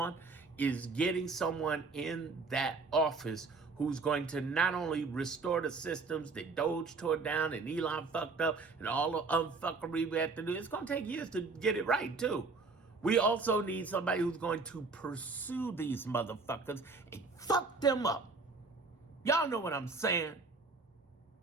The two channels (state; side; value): quieter; left; 4.1 dB